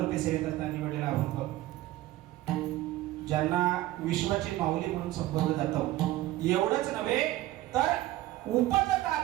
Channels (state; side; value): quieter; left; 16.1 dB